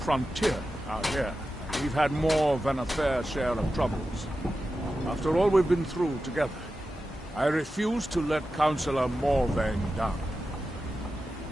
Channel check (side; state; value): both; normal; correlation 0.92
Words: out here. We've had more than a fair share of troubles. After all we've been through together, I refuse to let Councillor Morvain down.